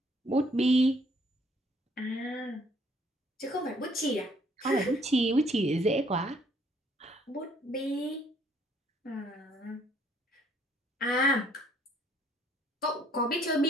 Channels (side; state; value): both; normal; correlation 0.64